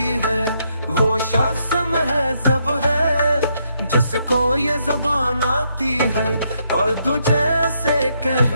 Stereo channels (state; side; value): inverted; both; correlation -0.76